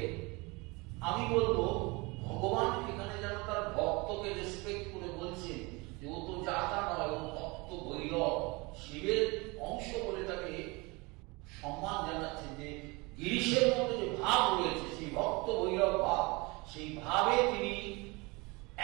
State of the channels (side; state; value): left; quieter; 26.1 dB